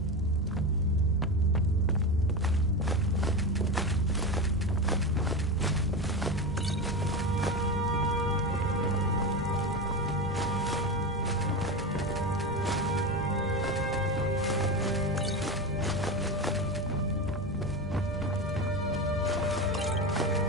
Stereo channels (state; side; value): normal; both; correlation 0.20